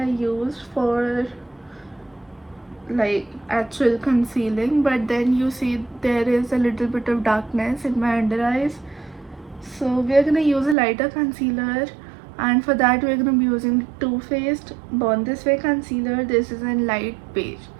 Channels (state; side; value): drops out; left; at 10.8 s